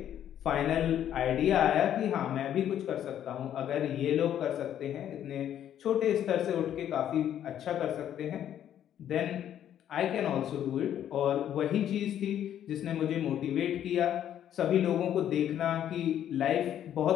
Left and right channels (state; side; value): quieter; right; 10.5 dB